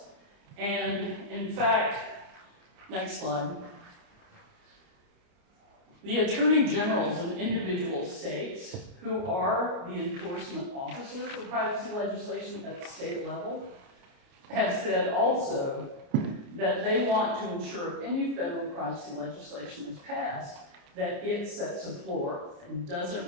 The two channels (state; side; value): late; left; 29 ms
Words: And in fact, next slide, the attorney generals in individual states who are the enforcement officer for privacy legislation at the state level have said also that they want to ensure if any federal privacy legislation is passed, that it sets a floor and